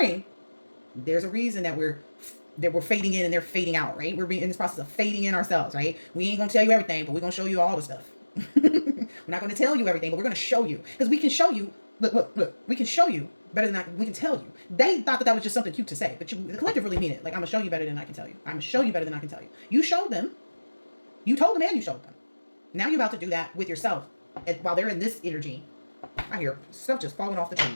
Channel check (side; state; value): both; inverted; correlation -1.00